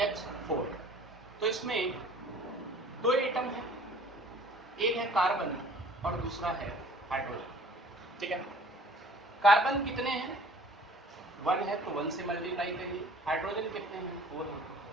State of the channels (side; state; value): both; normal; correlation 0.50